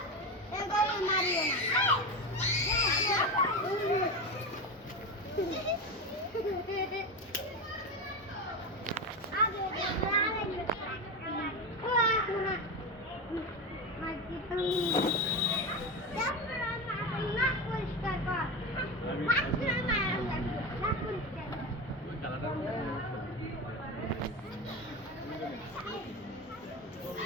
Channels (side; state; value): both; normal; correlation 0.20